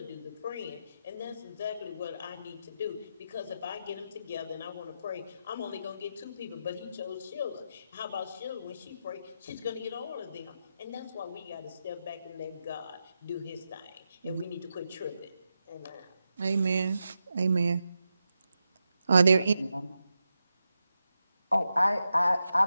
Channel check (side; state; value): both; inverted; correlation -0.88